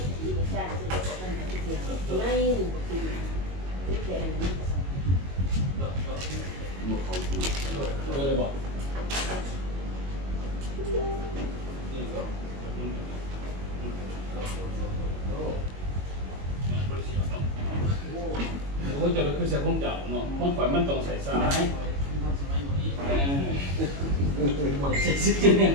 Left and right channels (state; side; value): late; left; 22 ms